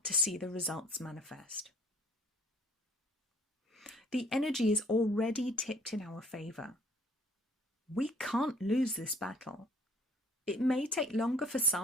to see the results manifest. The energy is already tipped in our favour. We can't lose this battle. It may take longer for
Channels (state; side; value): normal; both; correlation 0.56